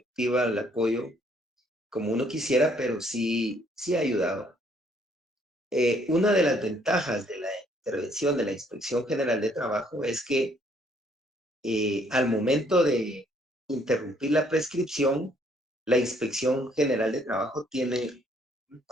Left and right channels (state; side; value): normal; both; correlation 0.65